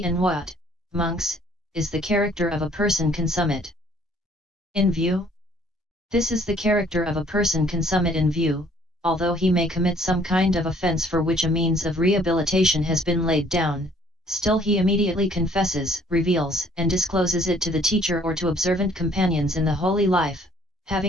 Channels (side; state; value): both; normal; correlation 0.60